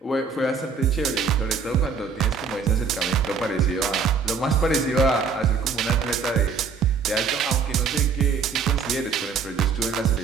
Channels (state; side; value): quieter; left; 5.5 dB